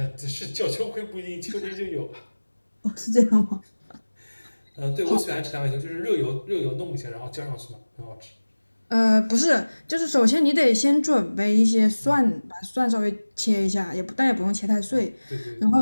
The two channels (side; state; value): both; inverted; correlation -1.00